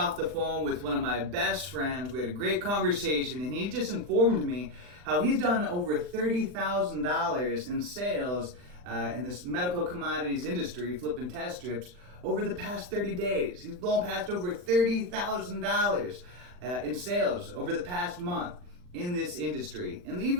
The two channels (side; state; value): left; late; 39 ms